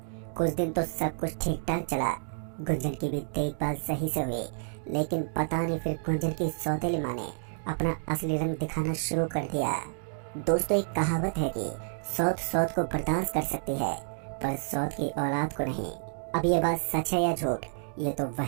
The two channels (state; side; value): silent; left; digital silence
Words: कुछ दिन तो सब कुछ ठीक ठाक चला, गुंजन की भी देखभाल सही से हुई, लेकिन पता नहीं फिर गुंजन की सौतेली माँ ने अपना असली रंग दिखाना शुरू कर दिया। दोस्तों, एक कहावत है कि सौत सौत को बर्दाश्त कर सकती है पर सौत की औलाद को नहीं। अब ये बात सच है या झूठ, ये तो